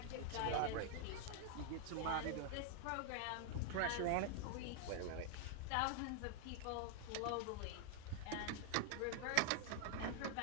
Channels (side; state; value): both; different; correlation 0.00